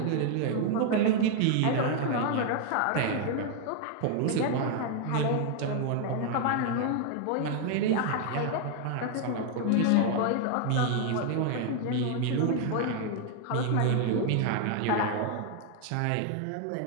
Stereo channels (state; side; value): different; both; correlation 0.00